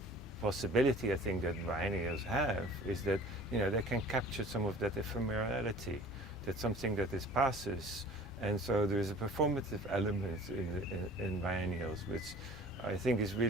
possibility I think that biennials have is that they can capture some of that ephemerality, that something that passes. And so there is a performative element in biennials, which I think is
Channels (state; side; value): normal; both; correlation 0.46